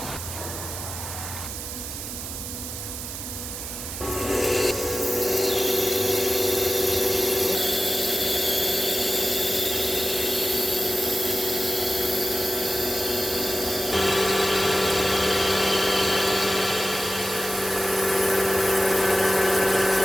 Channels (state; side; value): noise; right; hiss, 8 dB below the sound